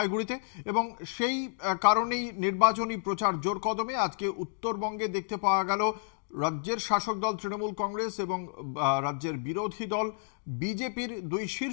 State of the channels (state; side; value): silent; right; digital silence